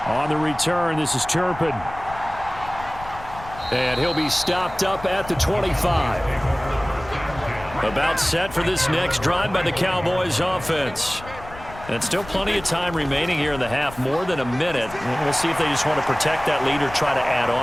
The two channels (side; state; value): left; noise; rumble, 16 dB below the sound